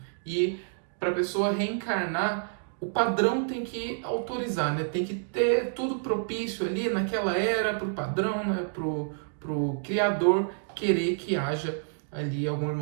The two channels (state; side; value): silent; left; digital silence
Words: E para a pessoa reencarnar, o padrão tem que autorizar, né? Tem que ter tudo propício ali naquela era para o padrão, né? Pro criador querer que haja ali algum